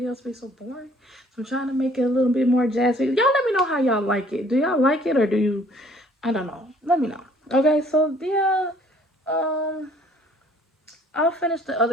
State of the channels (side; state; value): both; normal; correlation 0.58